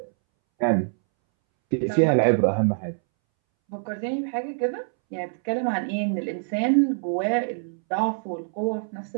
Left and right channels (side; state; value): left; silent; 62 dB below the other